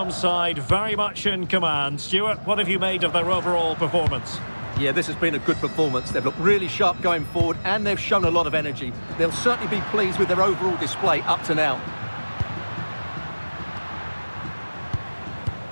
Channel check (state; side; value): inverted; both; correlation -1.00